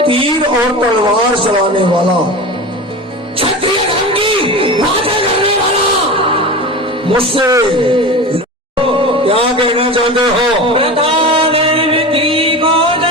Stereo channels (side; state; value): both; normal; correlation 0.29